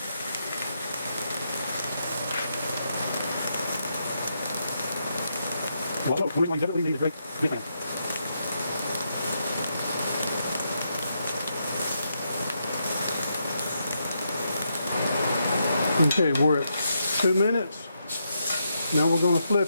Okay, we're at 2 minutes. Now we're going to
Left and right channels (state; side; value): inverted; both; correlation -0.81